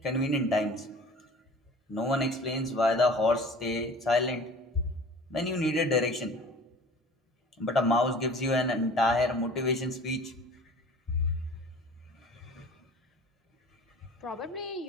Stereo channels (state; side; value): normal; both; correlation 0.44